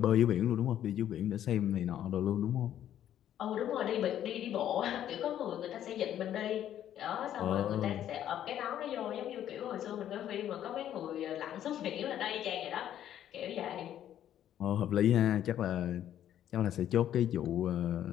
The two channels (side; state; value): right; quieter; 11.0 dB